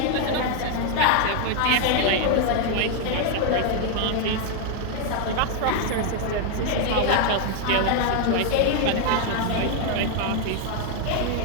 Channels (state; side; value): different; both; correlation 0.00